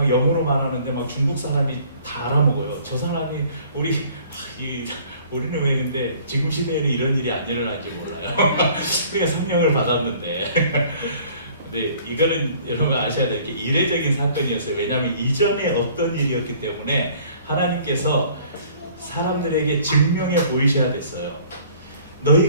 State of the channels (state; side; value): inverted; both; correlation -0.54